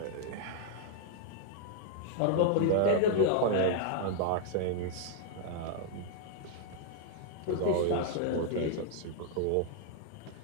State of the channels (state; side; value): different; both; correlation -0.01